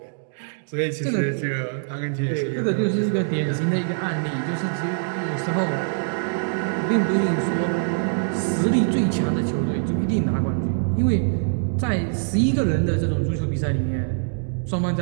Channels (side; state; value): left; silent; digital silence